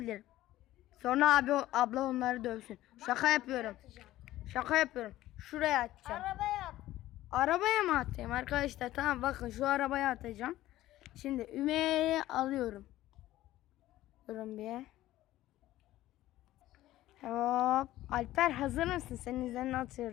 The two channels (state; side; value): quieter; right; 15.2 dB